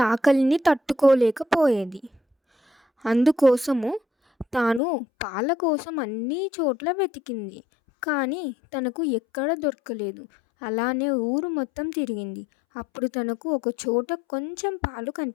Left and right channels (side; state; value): right; drops out; at 4.8 s